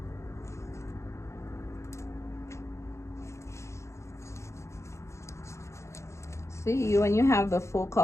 See, when you have the full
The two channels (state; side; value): late; right; 0.14 ms